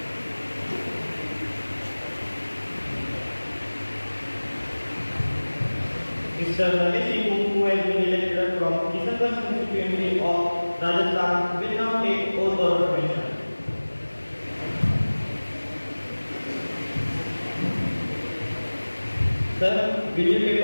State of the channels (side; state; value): both; inverted; correlation -1.00